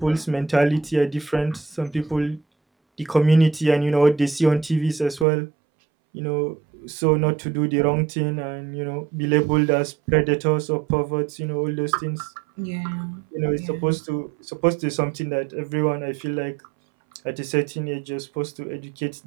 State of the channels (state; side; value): drops out; left; at 5.2 s